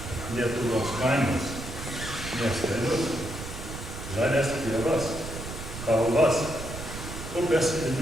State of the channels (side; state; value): right; noise; rumble, 9 dB below the sound